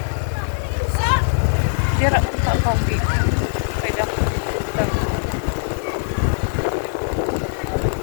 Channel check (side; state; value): right; silent; 59 dB below the other